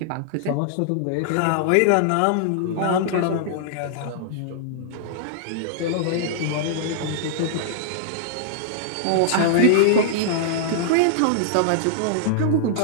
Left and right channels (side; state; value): both; different; correlation -0.02